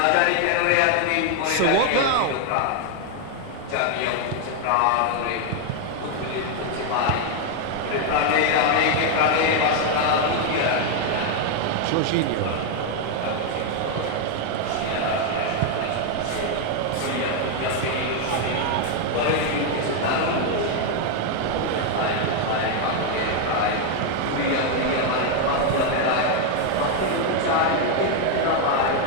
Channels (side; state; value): both; different; correlation 0.01